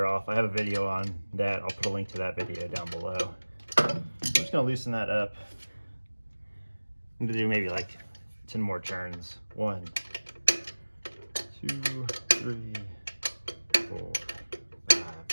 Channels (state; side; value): inverted; both; correlation -1.00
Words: off, I have a video on that. I'll put a link to that video down below. I'm just going to loosen that up. I'm going to do maybe like 10 more turns. 1, 2, 3, 4, 5,